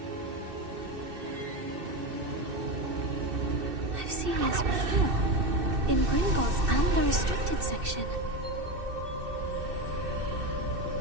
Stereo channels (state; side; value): late; left; 2.6 ms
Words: I've seen this before. In Gringotts and the restricted section.